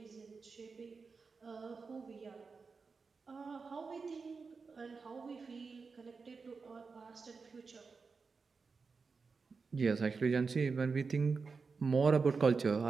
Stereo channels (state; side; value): quieter; left; 4.7 dB